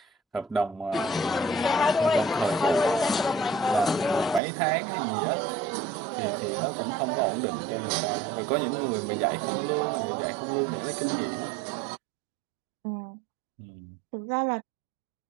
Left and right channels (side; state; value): left; drops out; at 4.4 s